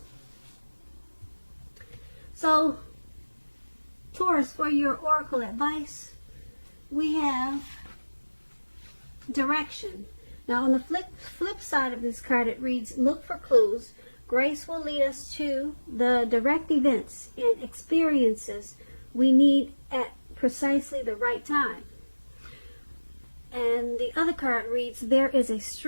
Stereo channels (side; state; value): both; inverted; correlation -1.00